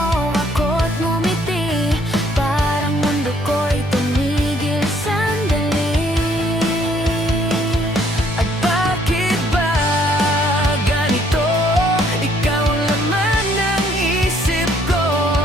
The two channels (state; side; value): normal; both; correlation 0.65